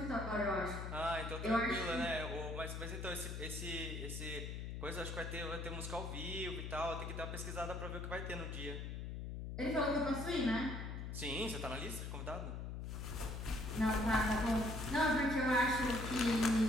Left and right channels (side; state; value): left; noise; hum, 5 dB below the sound